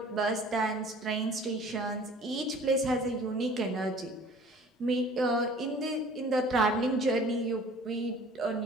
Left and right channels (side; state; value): both; normal; correlation 0.49